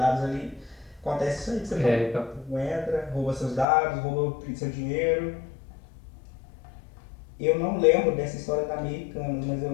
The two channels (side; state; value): right; drops out; at 3.7 s